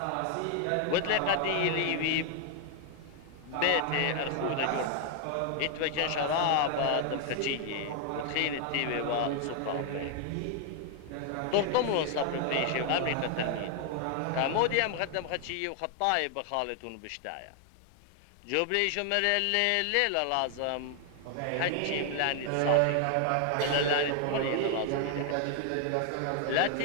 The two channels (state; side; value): different; both; correlation 0.00